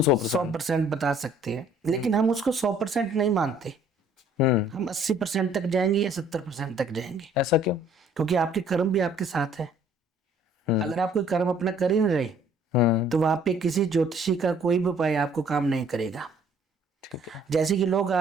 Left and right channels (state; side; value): normal; both; correlation 0.58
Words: 100%। 100% बता सकते हैं, लेकिन हम उसको 100% नहीं मानते। हम 80% तक जाएंगे या 70% तक जाएंगे। ऐसा क्यों? क्योंकि आपके कर्म भी आपके साथ है। अगर आप कोई कर्म अपना कर ही नहीं रहे तो वहां पे किसी ज्योतिषी का कोई भी उपाय आपको काम नहीं करेगा। ठीक है। जैसे कि लोग